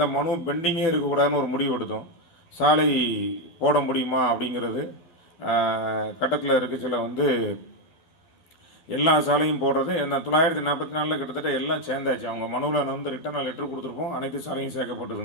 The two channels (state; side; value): late; right; 12 ms